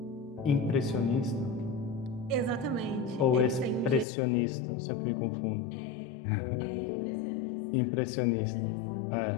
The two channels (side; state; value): right; drops out; at 4.0 s